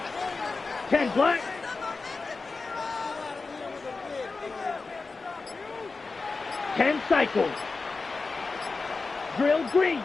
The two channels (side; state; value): right; quieter; 4.0 dB